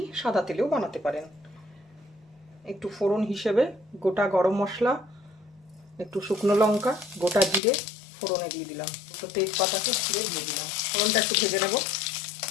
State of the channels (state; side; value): drops out; right; at 7.6 s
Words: সাদা তেলেও বানাতে পারেন। একটু ফোড়ন হিসেবে গোটা গরম মশলা, একটু শুকনো লঙ্কা, গোটা জিরে ফোড়নে দিয়ে দিলাম, একটু তেজপাতাকে ছিঁড়ে দিয়ে দিলাম। ফোড়নটা একটু ভেজে নেব।